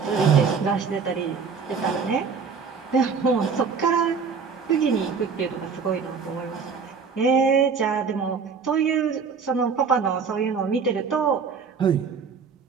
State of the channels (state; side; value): quieter; left; 5.7 dB